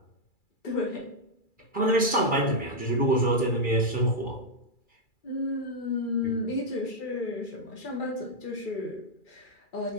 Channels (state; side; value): late; right; 2.3 ms